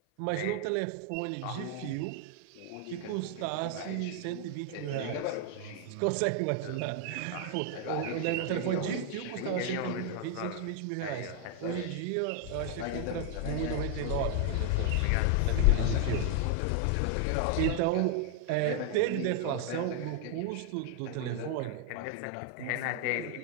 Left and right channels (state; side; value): different; both; correlation 0.00